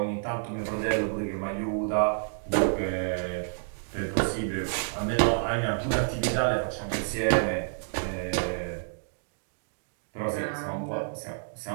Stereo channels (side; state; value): left; silent; digital silence